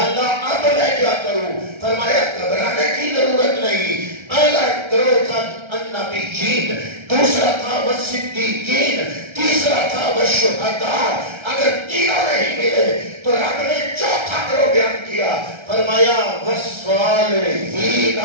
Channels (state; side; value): late; left; 1.3 ms